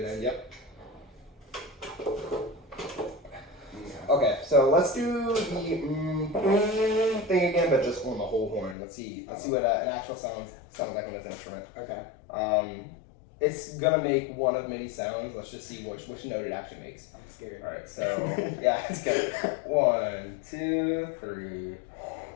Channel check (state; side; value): drops out; right; at 8.8 s